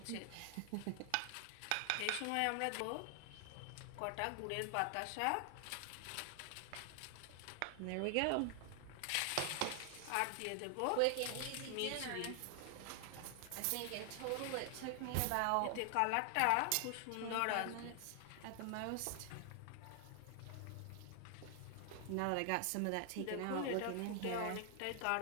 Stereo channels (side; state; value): both; different; correlation 0.00